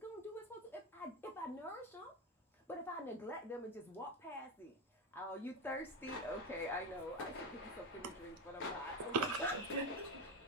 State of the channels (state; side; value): normal; both; correlation 0.15